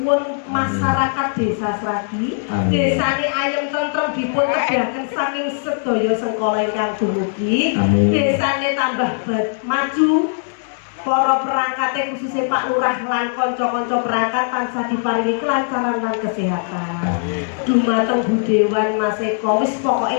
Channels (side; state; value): right; silent; digital silence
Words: masyarakat desa Sragi. Desane ayem tentrem dipun kedahaken saking sedaya sengkala ingkang dumugi. Desane tambah maju. Para perangkate khususnya Pak Lurah lan kanca-kanca perangkat tansah diparingi kelancaran lan kesehatan. Dumateng Budewan Mas Eko wis